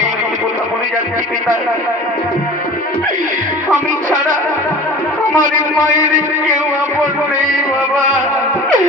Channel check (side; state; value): both; normal; correlation 0.40